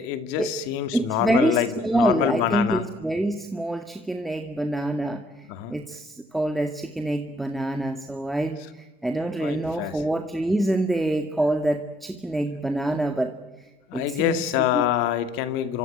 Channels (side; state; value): both; normal; correlation 0.64